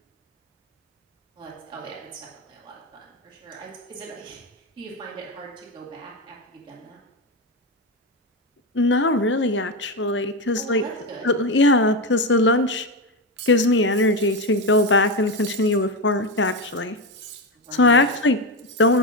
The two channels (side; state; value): both; normal; correlation 0.13